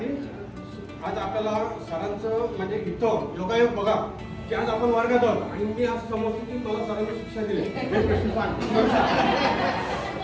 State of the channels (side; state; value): both; identical; correlation 1.00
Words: आज आपल्याला सरांचं म्हणजे इथं योगायोग बघा की आज आपण वर्गात आहोत आणि मी असं समजतो की मला सरांनी शिक्षा दिली, हे प्रश्न सांग,